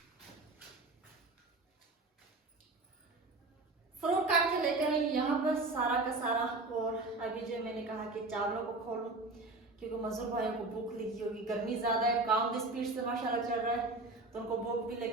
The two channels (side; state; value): left; quieter; 3.2 dB